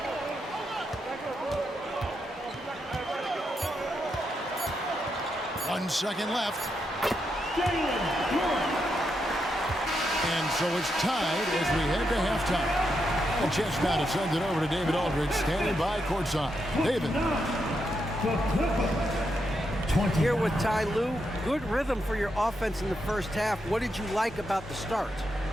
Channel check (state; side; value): normal; both; correlation 0.83